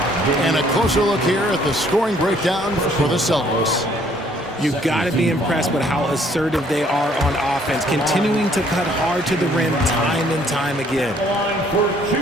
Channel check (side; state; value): both; normal; correlation 0.62